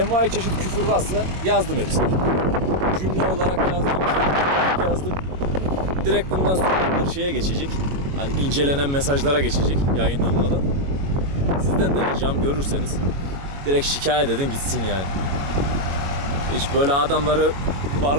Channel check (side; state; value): left; late; 21 ms